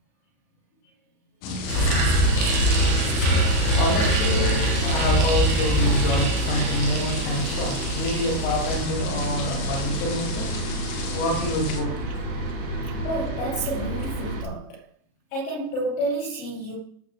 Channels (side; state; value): right; late; 37 ms